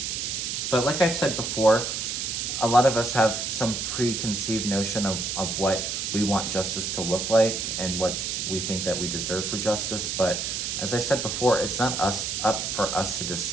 like I've said before, a lot of us have some preconceived notion of what we want justice to look like and what we think that we deserve for justice. But as I said before, it's not up for us to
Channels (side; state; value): right; noise; hiss, 2 dB below the sound